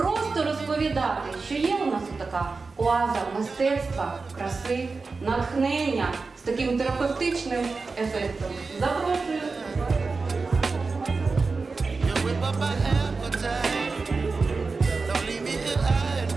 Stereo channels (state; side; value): quieter; left; 4.2 dB